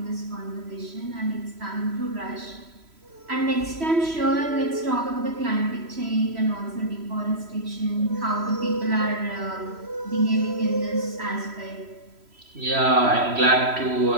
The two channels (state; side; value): late; left; 3.1 ms